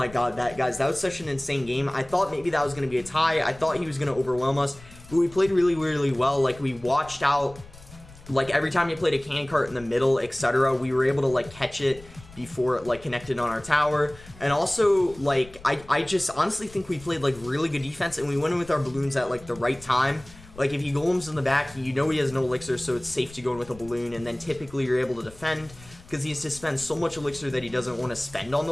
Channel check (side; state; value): left; noise; rumble, 20 dB below the sound